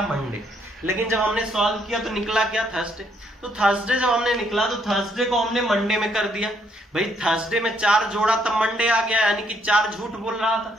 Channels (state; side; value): normal; both; correlation 0.71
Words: मंडे। लेकिन जब हमने सॉल्व किया तो निकला क्या? थर्सडे। तो थर्सडे जब हमने निकला तो थर्सडे को हमने मंडे में कर दिया भाई। थर्सडे में 4 जोड़ा तब मंडे आ गया, यानी कि 4 झूठ बोल रहा था।